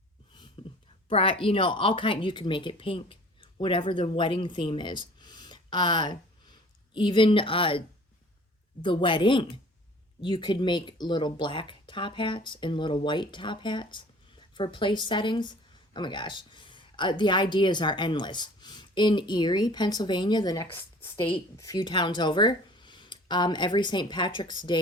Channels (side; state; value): both; normal; correlation 0.48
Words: You know, all kind. You can make it pink, whatever the wedding theme is. Even the wedding, you could make little black top hats and little white top hats for place settings. Oh my gosh, the ideas are endless. In Erie, Pennsylvania, the next state, a few towns over, every St. Patrick's